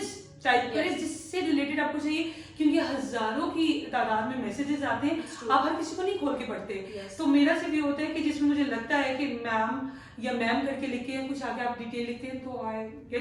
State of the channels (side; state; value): both; identical; correlation 1.00